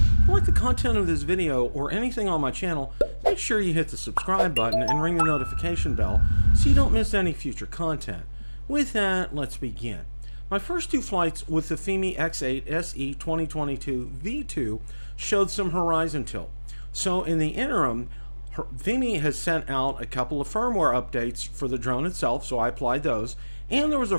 If you like the content of this video or anything on my channel, make sure you hit the subscribe button and ring the notification bell so you don't miss any future content. With that, let's begin. My first two flights with the Fimi X8 SE 2022 V2 showed some horizon tilt. So in the interim, Fimi has sent out a couple of firmware updates for the drone itself, so I applied those, and there was a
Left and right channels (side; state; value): both; inverted; correlation -1.00